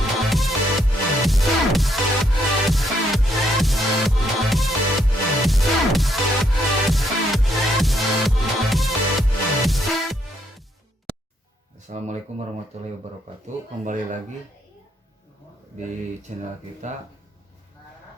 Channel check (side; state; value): both; normal; correlation 0.73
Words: Assalamualaikum warahmatullahi wabarakatuh. Kembali lagi di channel kita